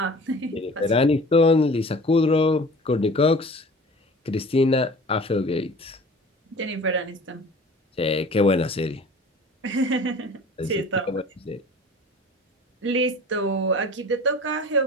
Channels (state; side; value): normal; both; correlation 0.43